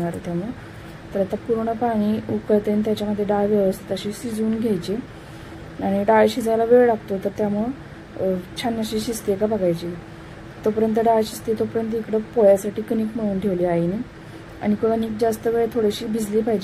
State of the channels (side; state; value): both; identical; correlation 1.00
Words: आहे त्यामुळे। तर आता पूर्ण पाणी उकळते आणि त्याच्यामध्ये डाळ व्यवस्थित अशी शिजवून घ्यायची आणि डाळ शिजायला वेळ लागतो, तर त्यामुळे छान अशी शिजते का बघायची। तोपर्यंत डाळ शिजते तोपर्यंत इकडे पोळ्यासाठी कणिक मळून ठेवली आईने आणि कणिक जास्त वेळ थोडीशी भिजली